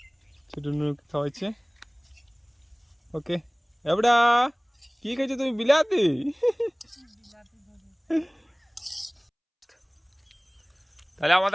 ছোট নুনুকে খাওয়াচ্ছে। ওকে এবড়া, কি খেয়েছো তুমি? বিলাতি? তাহলে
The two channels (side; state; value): both; identical; correlation 1.00